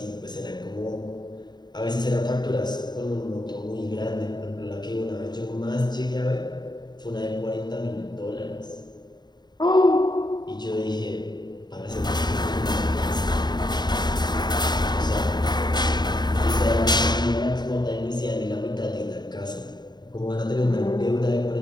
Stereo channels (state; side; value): late; right; 0.21 ms